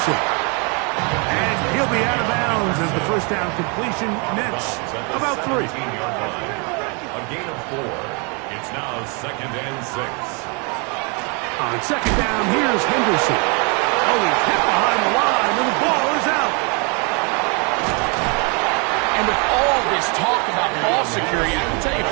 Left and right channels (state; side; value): quieter; left; 33.7 dB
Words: And he'll be out of bounds as the first down completion nets about 3. A gain of 4. It's now second and 6. On second down, here's Henderson. Oh, he's hit behind the line, and the ball is out. And with all this talk about ball security, I can tell you